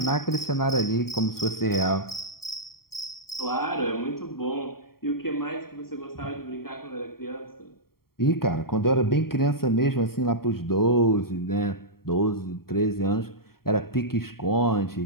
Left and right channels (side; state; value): right; late; 0.93 ms